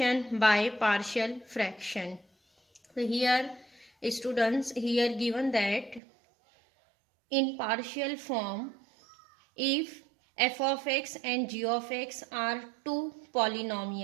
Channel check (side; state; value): left; drops out; at 6.0 s